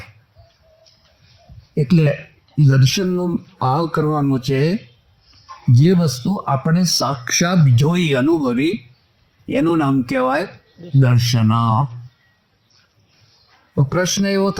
એટલે દર્શનનો ભાવ કરવાનો છે જે વસ્તુ આપણે સાક્ષાત જોઈ અનુભવી એનું નામ કહેવાય દર્શન. તો પ્રશ્ન એવો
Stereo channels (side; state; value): both; identical; correlation 1.00